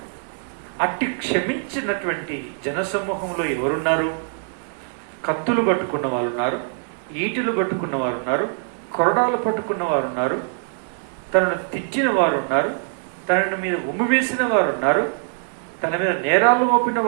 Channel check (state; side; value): silent; left; digital silence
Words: అట్టి క్షమించినటువంటి జనసమూహంలో ఎవరున్నారు? కత్తులు పట్టుకున్న వారు ఉన్నారు, ఈటులు పట్టుకున్న వారు ఉన్నారు, కొరడాలు పట్టుకున్న వారు ఉన్నారు, తనను తిట్టిన వారు ఉన్నారు, తన మీద ఉమ్ము వేసిన వారు ఉన్నారు, తన మీద నేరాలు మోపిన